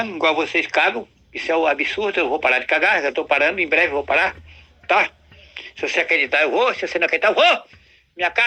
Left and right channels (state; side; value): identical; both; correlation 1.00